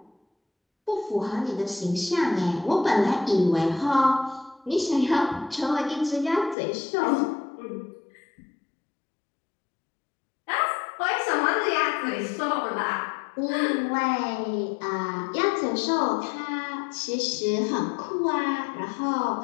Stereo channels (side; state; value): right; drops out; at 6.6 s